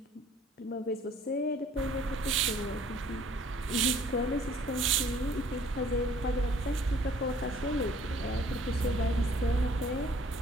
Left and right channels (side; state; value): both; normal; correlation 0.56